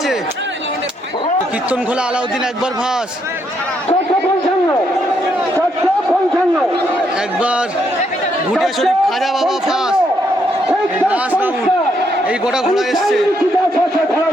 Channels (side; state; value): both; normal; correlation 0.75